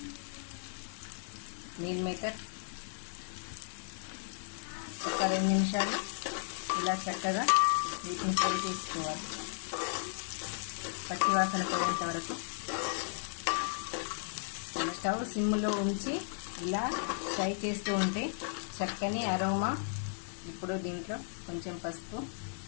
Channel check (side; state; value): right; silent; digital silence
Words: మీల్ మేకర్, ఒక 2 నిమిషాలు ఇలా చక్కగా వీటిని ఫ్రై చేసుకోవాలి. పచ్చి వాసన పోయేంత వరకు స్టవ్ సిమ్లో ఉంచి ఇలా ఫ్రై చేస్తూ ఉంటే చక్కని అరోమా. ఇప్పుడు దీంట్లో కొంచెం పసుపు,